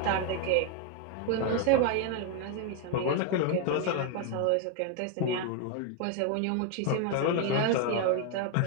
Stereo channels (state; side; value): different; both; correlation 0.01